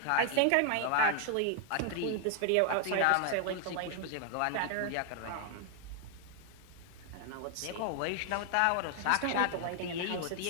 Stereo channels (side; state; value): both; different; correlation 0.00